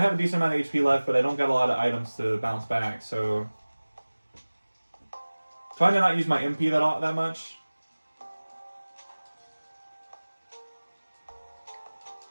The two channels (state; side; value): inverted; both; correlation -1.00